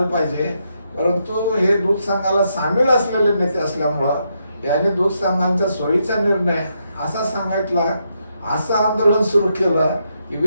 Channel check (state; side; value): inverted; both; correlation -0.80